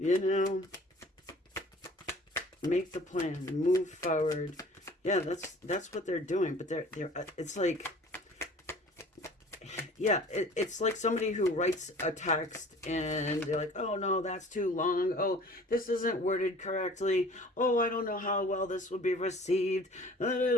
know, make the plan, move forward. Yeah, that's what they're doing. But they're it's like, yeah, it's like somebody who writes a text and they're like, oh no, that's too long. Oh, this isn't worded correctly. Oh, I don't know how well this will be received.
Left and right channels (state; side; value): normal; both; correlation 0.48